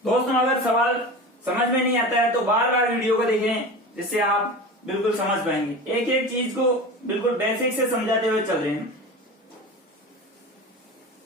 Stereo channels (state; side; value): normal; both; correlation 0.31